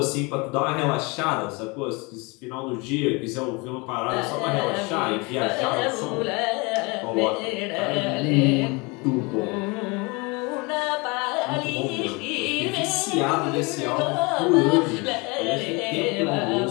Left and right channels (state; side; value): quieter; right; 27.7 dB